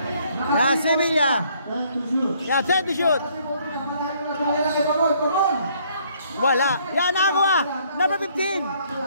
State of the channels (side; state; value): both; inverted; correlation -0.65